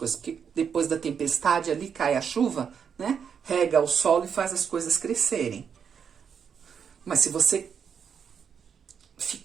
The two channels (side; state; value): left; quieter; 7.1 dB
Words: Porque depois da tempestade ali cai a chuva, né, rega o solo e faz as coisas crescerem. Mas se você